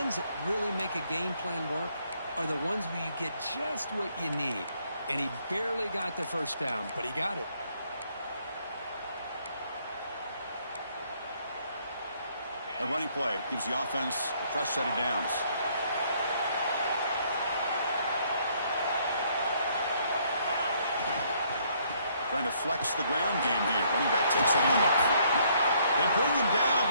that really make a game plan work are the ones where you get just what you need. And he barely got the first down, but he got it. A running play gives the offense a fresh set of downs. Trying to flex the ground game here. Running back takes the handoff. They bring him down,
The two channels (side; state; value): both; inverted; correlation -0.67